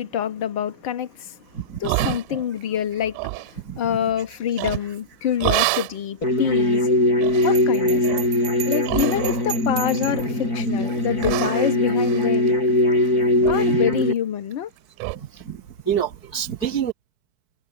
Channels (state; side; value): late; right; 4.6 ms